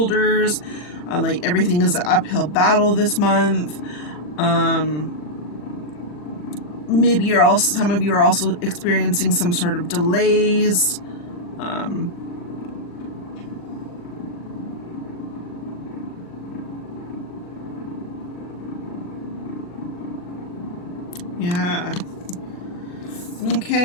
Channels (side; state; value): right; late; 40 ms